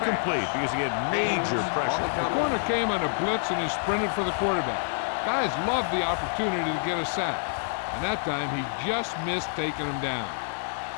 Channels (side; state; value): right; silent; 60 dB below the other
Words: because he had major pressure. The corner came on a blitz and he sprinted for the quarterback. Guys love the opportunity to get a sack. And that time he just missed taking him down.